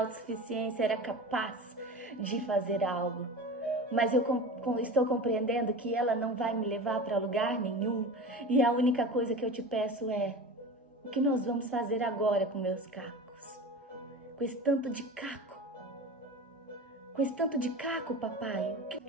era capaz de fazer algo. Mas eu estou compreendendo que ela não vai me levar para lugar nenhum. E a única coisa que eu te peço é, o que nós vamos fazer agora com meus cacos? Com esse tanto de caco. Com esse tanto de caco, papai.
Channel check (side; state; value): both; normal; correlation 0.32